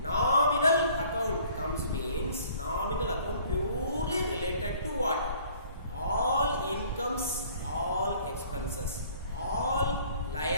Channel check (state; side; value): inverted; both; correlation -0.55